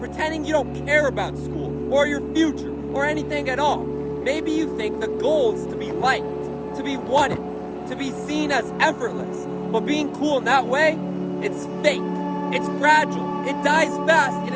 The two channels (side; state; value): both; identical; correlation 1.00